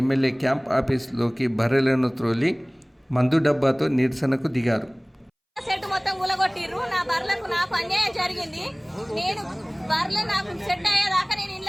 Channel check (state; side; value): identical; both; correlation 1.00